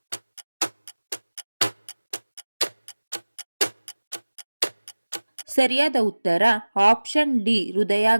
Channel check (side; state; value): both; inverted; correlation -1.00